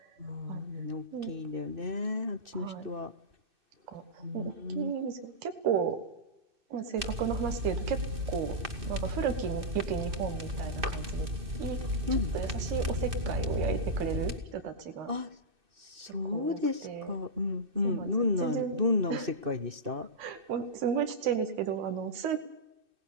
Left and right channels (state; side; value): late; left; 2.6 ms